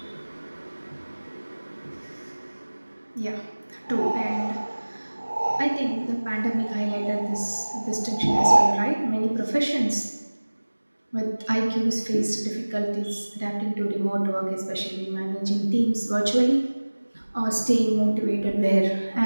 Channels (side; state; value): both; inverted; correlation -1.00